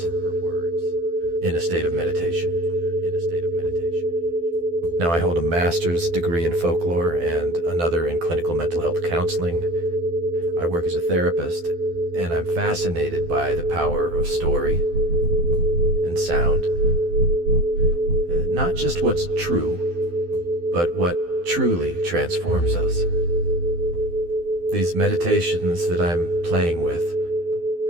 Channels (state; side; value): late; left; 12 ms